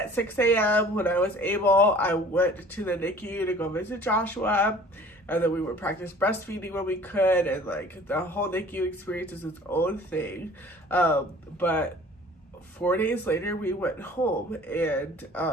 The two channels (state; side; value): normal; both; correlation 0.48